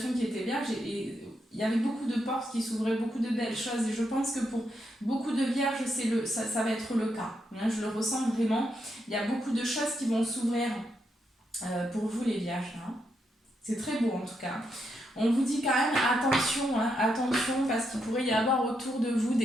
qui était vierge et il y avait beaucoup de portes qui s'ouvraient, beaucoup de belles choses et je pense que pour beaucoup de vierges, ça va être le cas. Je le ressens vraiment. Il y a beaucoup de choses qui vont s'ouvrir pour vous les vierges. C'est très beau en tout cas. On vous dit quand même attention, attention parce qu'il pourrait y avoir autour de vous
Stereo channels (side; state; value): both; normal; correlation 0.81